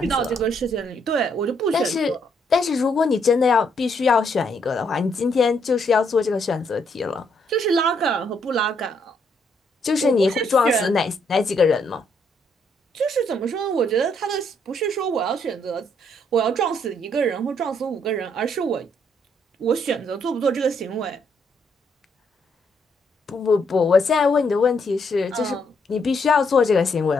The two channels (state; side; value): normal; both; correlation 0.73